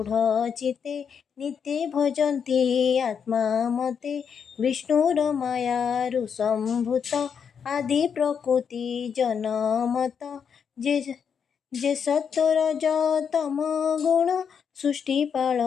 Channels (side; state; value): right; quieter; 7.0 dB